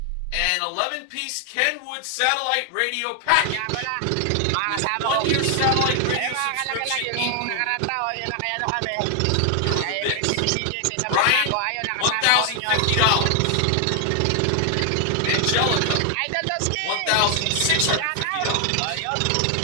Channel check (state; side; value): different; both; correlation 0.00